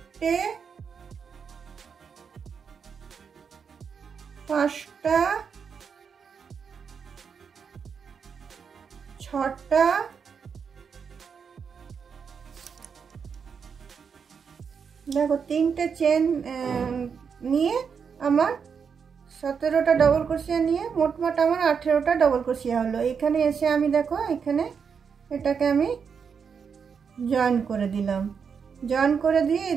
পাঁচটা, ছটা, দেখো তিনটে চেন নিয়ে আমার 17টা ডবল ক্রোশিয়া নিয়ে মোটমাট আমার 18টা ডবল ক্রোশিয়া হলো। এখানে এসে আমি দেখো এখানে এটাকে আমি জয়েন করে দিলাম। জয়েন করে দিয়ে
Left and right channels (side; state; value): left; quieter; 6.4 dB